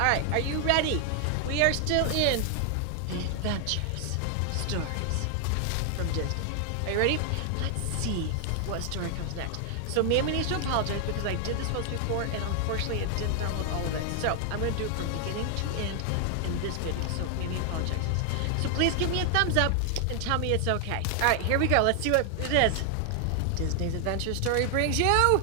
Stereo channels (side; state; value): both; different; correlation 0.00